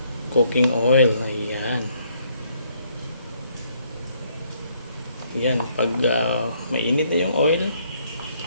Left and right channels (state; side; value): inverted; both; correlation -0.68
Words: cooking oil. Ayan. Ayan, pag mainit na yung oil,